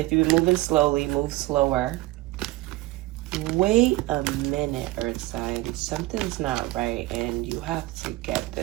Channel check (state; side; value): quieter; left; 19.0 dB